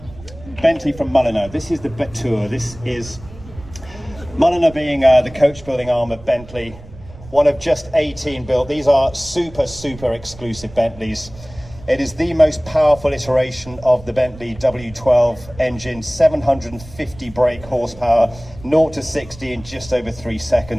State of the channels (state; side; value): noise; right; rumble, 18 dB below the sound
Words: Bentley from Mulliner. This is the Betour. This is Mulliner being the coach building arm of Bentley. One of just 18 built. These are super exclusive Bentleys. It is the most powerful iteration of the Bentley W12 engine, 750 brake horsepower, 0 to 60 in just over 3